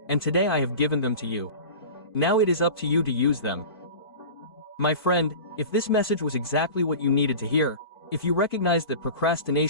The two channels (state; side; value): late; right; 2.5 ms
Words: and today I have given them to you. Now it is up to you to use them. My friend, if this message was exactly what you needed to hear, if you recognize that